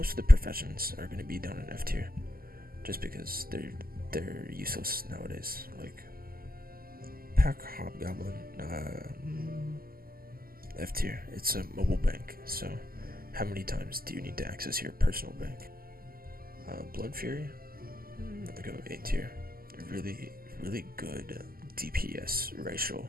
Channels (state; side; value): late; left; 0.42 ms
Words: of the professions are going to be down in F tier, just because they're useless nowadays. Like Pack Hobgoblin, F tier. It's a mobile bank. So how many times do you need to access your personal bank? Blood Fury. Let me go A tier. Really good DPS